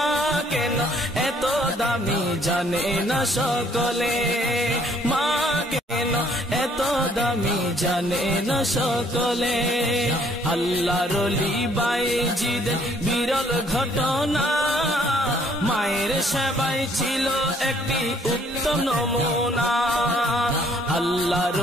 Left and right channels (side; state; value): both; normal; correlation 0.63